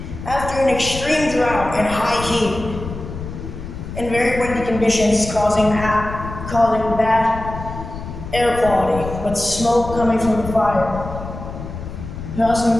After an extreme drought and high heat and very windy conditions causing bad air quality with smoke coming from the fire. It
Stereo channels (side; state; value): left; noise; rumble, 9 dB below the sound